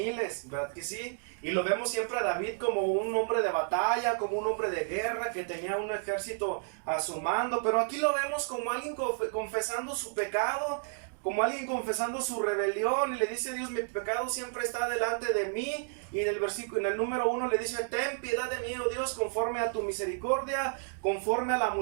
¿verdad que sí? Y lo vemos siempre a David como un hombre de batalla, como un hombre de guerra que tenía un ejército a su mando. Pero aquí lo vemos como alguien confesando su pecado, como alguien confesando su rebelión, y le dice a Dios: mi pecado siempre está delante de mí. Y en el número 1 le dice: ten piedad de mí, oh Dios, conforme a tu misericordia, conforme a la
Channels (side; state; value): left; silent; digital silence